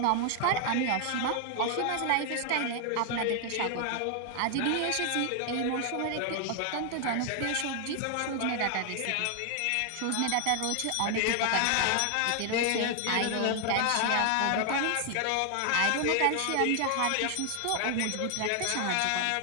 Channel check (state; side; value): different; both; correlation 0.00